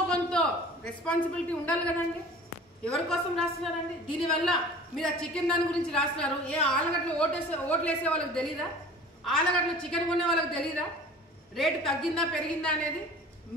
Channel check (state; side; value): normal; both; correlation 0.43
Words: కొంత రెస్పాన్సిబిలిటీ ఉండాలి కదండి. ఎవరి కోసం రాస్తున్నారండి? దీనివల్ల మీరు ఆ చికెన్ దాని గురించి రాస్తున్నారు. ఏ ఆలగడ్డలో ఓట్లు వేసే వాళ్ళకి తెలీదా? ఆలగడ్డలో చికెన్ కొనే వాళ్ళకి తెలీదా రేటు తగ్గిందా పెరిగిందా అనేది?